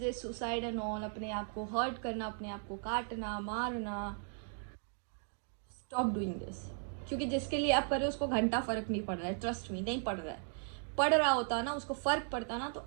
सुसाइड एंड ऑल, अपने आप को हर्ट करना, अपने आप को काटना, मारना, स्टॉप डूइंग दिस। क्योंकि जिसके लिए आप कर रहे हो उसको घंटा फर्क नहीं पड़ रहा है, ट्रस्ट मी, नहीं पड़ रहा है। पड़ रहा होता ना, उसको फर्क पड़ता ना, तो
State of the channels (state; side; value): silent; left; 53 dB below the other